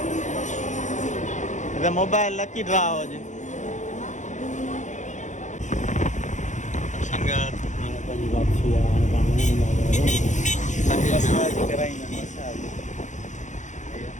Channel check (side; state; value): right; late; 0.35 ms